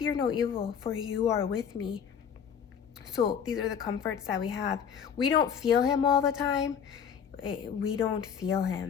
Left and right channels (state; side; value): quieter; right; 7.7 dB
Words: no evil, for you are with me. So these are the comforts that we have. We don't feel him all the time. We don't feel